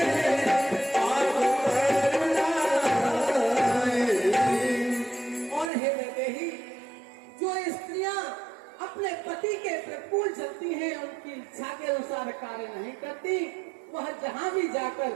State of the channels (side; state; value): left; drops out; at 5.7 s